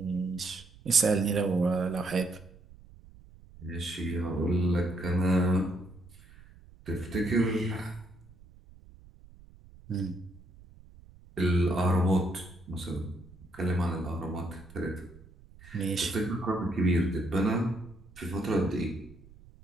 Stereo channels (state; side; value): noise; right; rumble, 22 dB below the sound